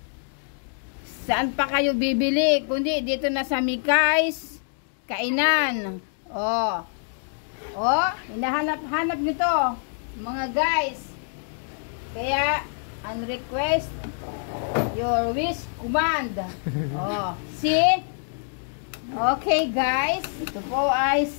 Saan pa kayo bibili? Kundi dito na sa Mikay's Kainan. Hinahanap nito mga guys. Kaya ang request, your wish command. See? Okay guys, ito po ay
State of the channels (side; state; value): right; silent; digital silence